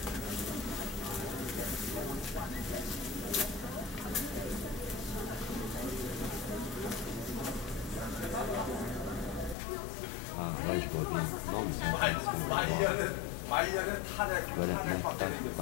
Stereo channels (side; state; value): right; drops out; at 9.6 s